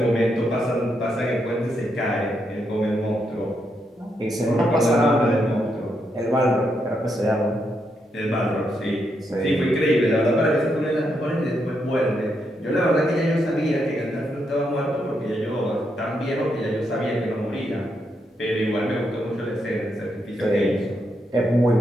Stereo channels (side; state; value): both; normal; correlation 0.80